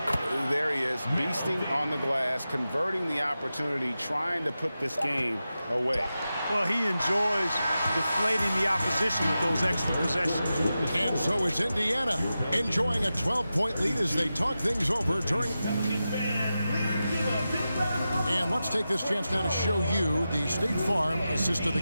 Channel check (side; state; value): both; inverted; correlation -0.92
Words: There he is, beasting on the glass, converting the opportunity, trying to put this game away. Well, he enjoys deflating the opposition with those extra possessions. And so it's Indiana enjoying a 12-point lead as they talk things over during. And let's take this chance now to show you the State Farm assist of the